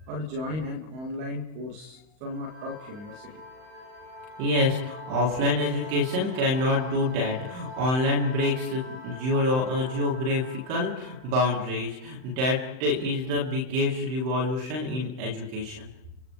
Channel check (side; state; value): left; late; 39 ms